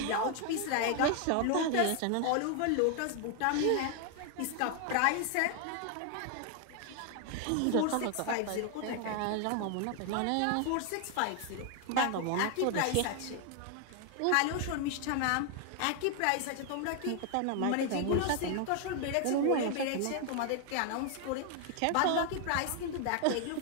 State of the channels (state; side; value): different; both; correlation 0.00